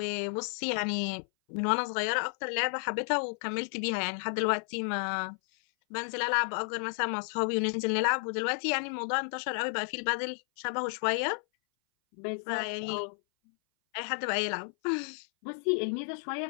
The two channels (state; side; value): silent; right; 56 dB below the other